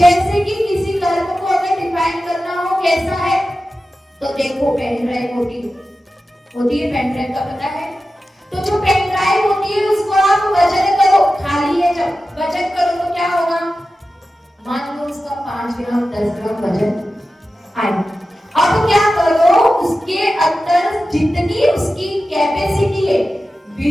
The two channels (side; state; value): both; normal; correlation 0.93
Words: कि किसी कर्म को अगर डिफाइन करना हो कैसा है, तो देखो पेन ड्राइव होती है पेन ड्राइव का पता है। तो जो पेन ड्राइव होती है उसको आप वजन करो, खाली है जब वजन करो तो क्या होगा, मान लो उसका 5 ग्राम 10 ग्राम वजन आए। अब क्या करो, उसके अंदर जितनी उसकी कैपेसिटी है,